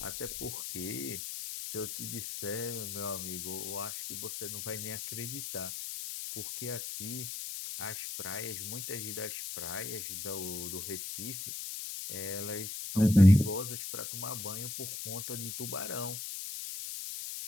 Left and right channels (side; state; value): left; noise; hiss, 6 dB below the sound